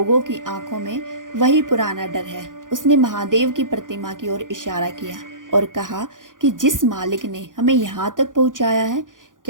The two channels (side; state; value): left; late; 0.89 ms